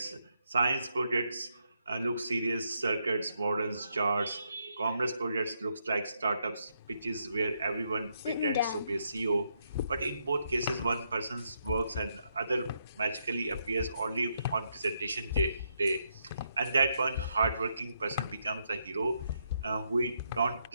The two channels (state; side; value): inverted; both; correlation -0.78